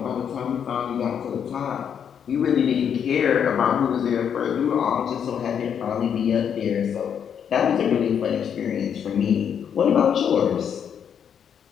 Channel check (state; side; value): quieter; right; 8.1 dB